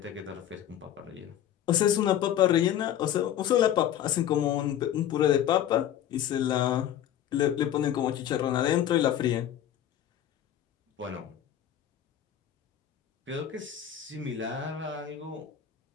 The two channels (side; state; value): right; quieter; 10.9 dB